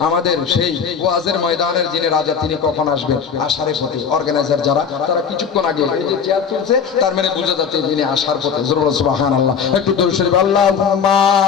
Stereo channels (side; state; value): right; quieter; 6.7 dB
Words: আমাদের সেই ওয়াজের ময়দানের যিনি রাজা, তিনি কখন আসবেন? আসার পথে। অর্গানাইজার যারা, তারা কিছুক্ষণ আগে এই যে চেয়ার তুলছে, তার মানে বোঝা যাচ্ছে তিনি আসার পথে। জোরে বলেন সুবহানাল্লাহ। একটু দরুদ শরীফ আল্লাহুম্মা